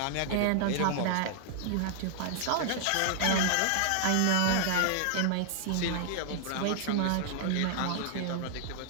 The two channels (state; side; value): different; both; correlation -0.01